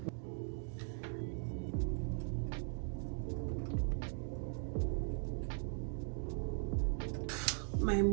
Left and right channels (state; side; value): silent; left; 51 dB below the other